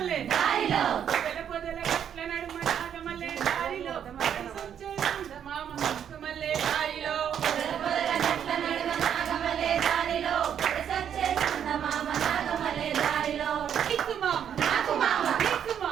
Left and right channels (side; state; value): left; quieter; 8.9 dB